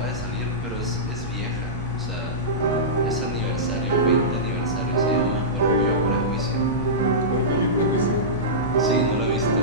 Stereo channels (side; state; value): both; normal; correlation -0.16